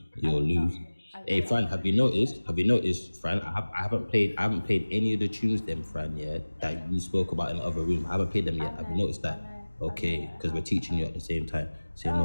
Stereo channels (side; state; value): both; inverted; correlation -1.00